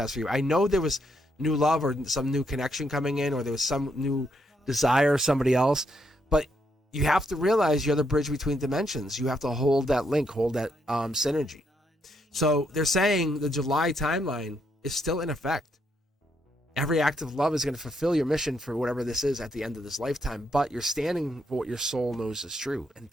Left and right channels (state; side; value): normal; both; correlation 0.76